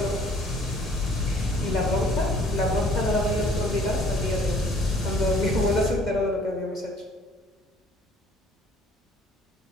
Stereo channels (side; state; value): both; normal; correlation 0.56